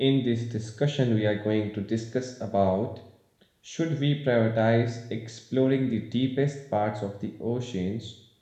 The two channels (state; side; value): identical; both; correlation 1.00